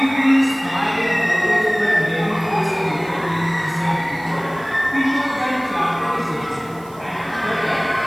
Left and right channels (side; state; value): right; noise; hiss, 25 dB below the sound